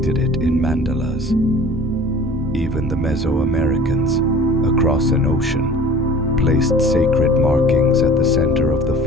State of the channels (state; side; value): normal; both; correlation 0.44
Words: it in mandalas. Even the Mesoamericans, across an ocean, placed sacred markings at the center of the